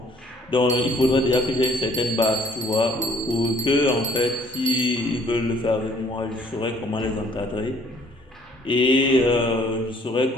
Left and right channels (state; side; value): normal; both; correlation 0.59